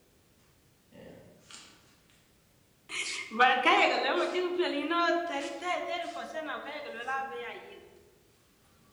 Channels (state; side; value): identical; both; correlation 1.00